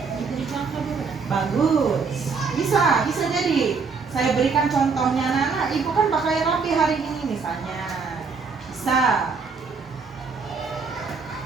Bagus, bisa jadi. Saya berikan contohnya, anak-anak, Ibu kan pakai rapi hari ini misalnya, bisa.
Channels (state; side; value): quieter; left; 5.0 dB